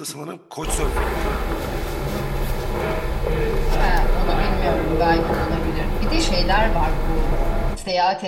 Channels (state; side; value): identical; both; correlation 1.00